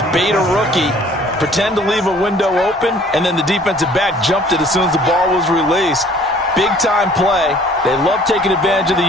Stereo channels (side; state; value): both; normal; correlation 0.54